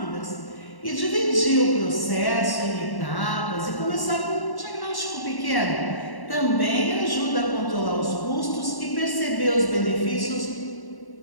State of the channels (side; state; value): right; late; 1.1 ms